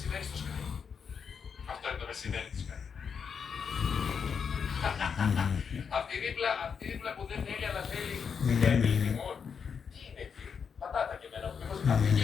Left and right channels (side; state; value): right; quieter; 6.5 dB